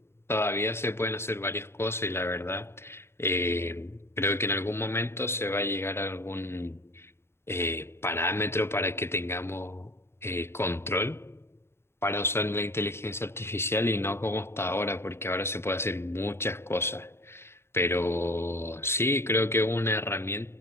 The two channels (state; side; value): late; right; 0.12 ms